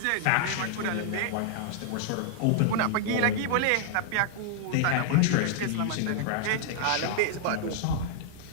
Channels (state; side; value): different; both; correlation -0.01